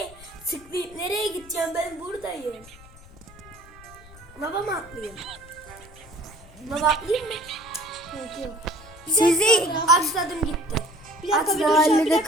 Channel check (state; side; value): noise; left; rumble, 21 dB below the sound